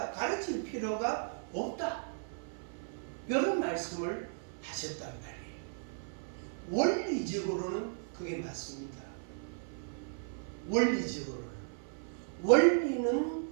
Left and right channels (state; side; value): silent; left; 54 dB below the other